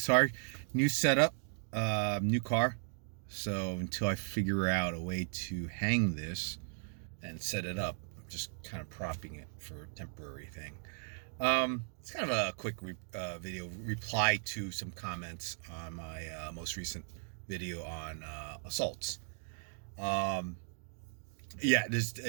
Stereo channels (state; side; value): silent; left; 53 dB below the other